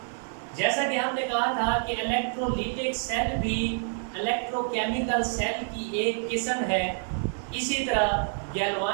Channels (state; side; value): silent; left; 60 dB below the other